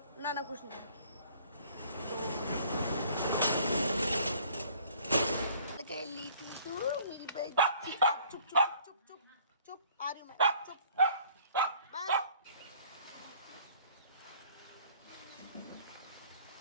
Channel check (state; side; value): inverted; both; correlation -0.56